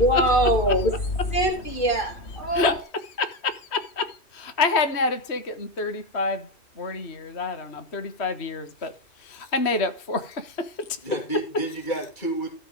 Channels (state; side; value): late; right; 3.1 ms